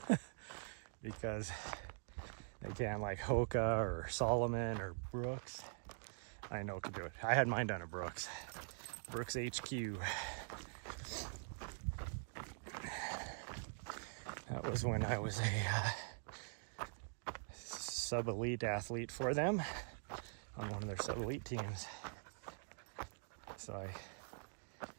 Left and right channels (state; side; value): silent; left; digital silence